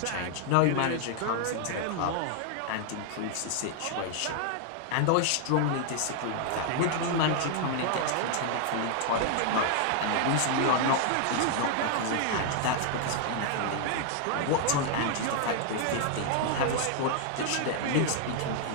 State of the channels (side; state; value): both; different; correlation 0.00